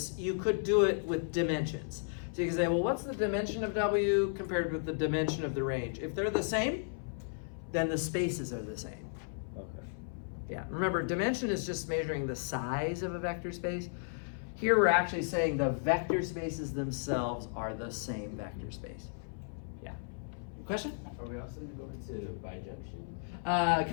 you could do it with dimensions. So you can say, well, what's the dimension of W compared with the dimension of the range? If they're the same, then the spaces are the same. Okay. Yeah, remember, dimension is just measuring the size of a vector space. Here we're actually saying the vector spaces themselves are the same vector space. Yeah. Question? Are we also going to bijunction?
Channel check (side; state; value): right; silent; 55 dB below the other